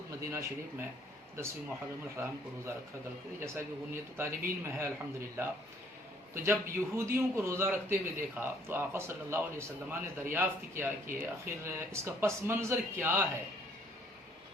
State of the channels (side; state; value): both; normal; correlation 0.62